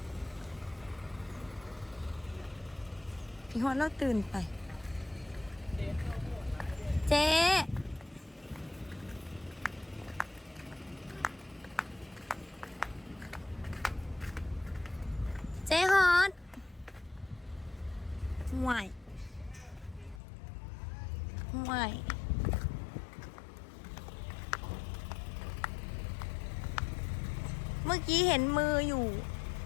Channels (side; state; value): right; drops out; at 20.2 s